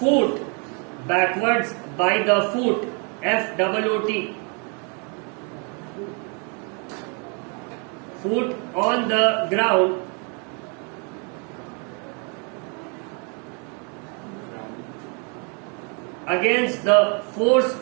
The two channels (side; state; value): left; quieter; 36.0 dB